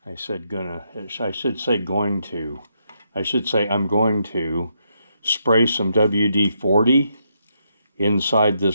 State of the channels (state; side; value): inverted; both; correlation -0.79